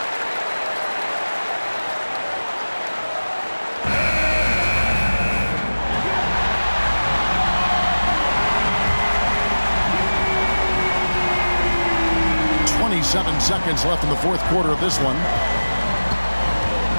.7 seconds left in the fourth quarter of this one.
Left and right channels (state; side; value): inverted; both; correlation -1.00